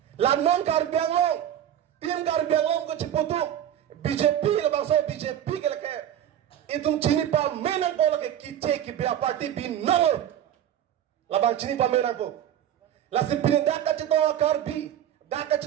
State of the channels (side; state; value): left; quieter; 10.7 dB